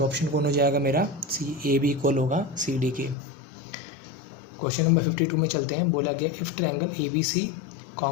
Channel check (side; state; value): right; drops out; at 3.2 s